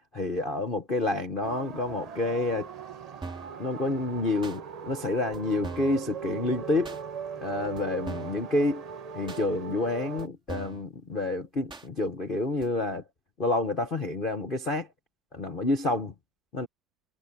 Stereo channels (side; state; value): both; normal; correlation 0.41